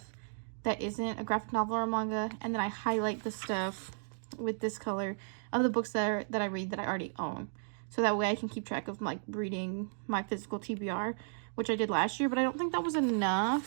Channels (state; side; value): silent; left; digital silence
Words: that isn't a graphic novel or a manga. And then I highlight the stuff with this color of the books that I read that I already own. So that way I can keep track of like reading my physical TBR, which I did last year, but I don't think that was